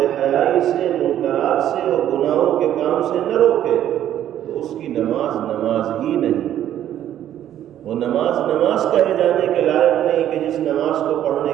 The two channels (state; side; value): quieter; left; 11.4 dB